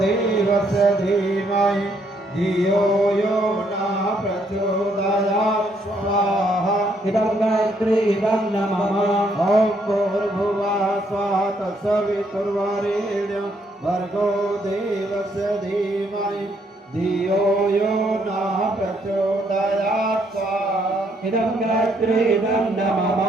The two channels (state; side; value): normal; both; correlation 0.71